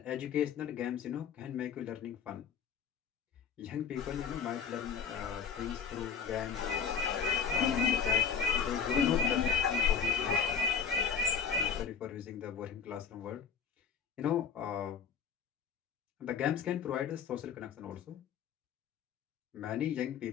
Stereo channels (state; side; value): quieter; right; 6.7 dB